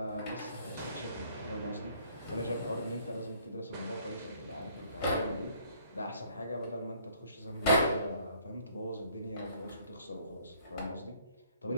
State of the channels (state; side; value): inverted; both; correlation -0.61